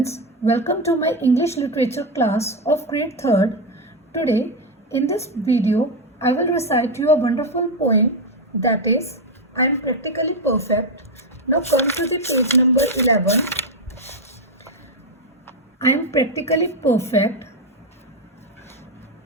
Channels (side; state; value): both; normal; correlation 0.07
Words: welcome to my English literature class of grade 3rd. Today, in this video, I will recite you a wonderful poem that is, I am practically perfect. Now come to the page number 11. I am practically perfect.